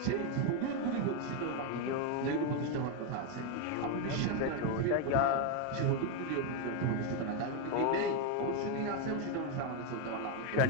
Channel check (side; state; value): both; different; correlation 0.01